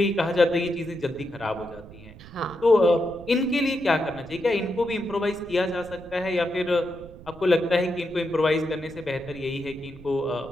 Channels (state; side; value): noise; right; rumble, 18 dB below the sound